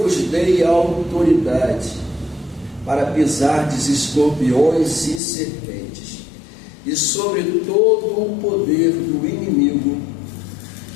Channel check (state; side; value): drops out; right; at 5.2 s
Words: dei autoridade para pisardes escorpiões e serpentes, e sobre todo o poder do inimigo,